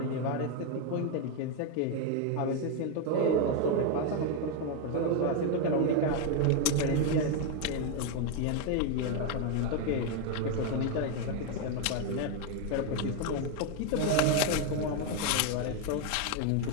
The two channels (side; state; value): both; different; correlation 0.01